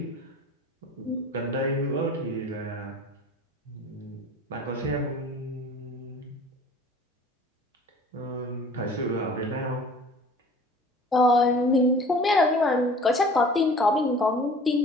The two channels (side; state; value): both; normal; correlation 0.47